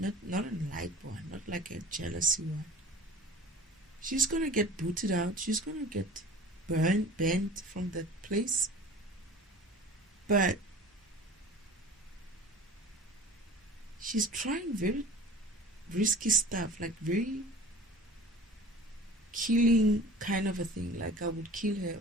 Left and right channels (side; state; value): both; normal; correlation 0.42